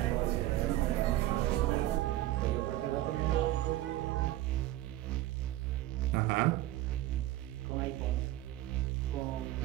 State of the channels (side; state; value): left; quieter; 15.4 dB